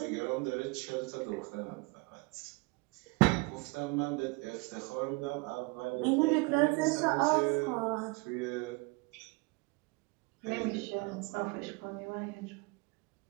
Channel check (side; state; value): left; quieter; 28.0 dB